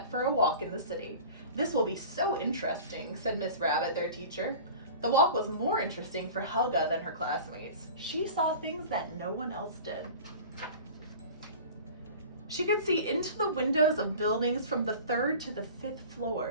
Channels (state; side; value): inverted; both; correlation -0.39